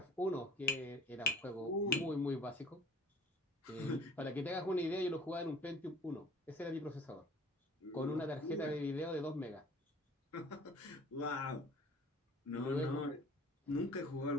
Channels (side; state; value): both; normal; correlation 0.51